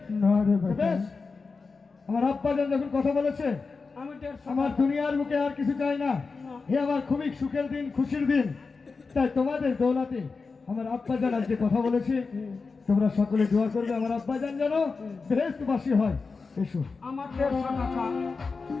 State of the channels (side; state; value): right; quieter; 4.5 dB